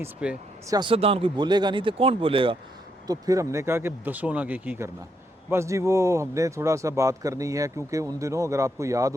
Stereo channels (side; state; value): both; normal; correlation 0.78